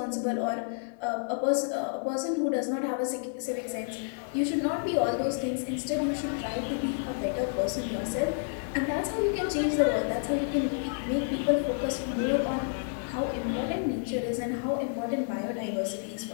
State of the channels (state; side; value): silent; right; digital silence